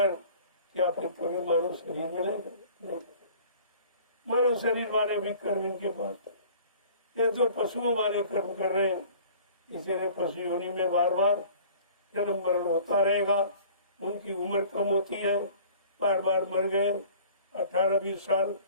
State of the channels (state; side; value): inverted; both; correlation -0.48